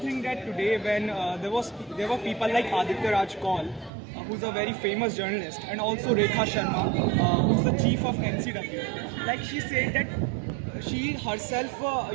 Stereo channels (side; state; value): left; drops out; at 3.9 s